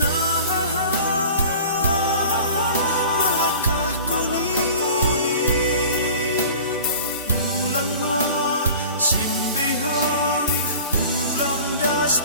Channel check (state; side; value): inverted; both; correlation -0.41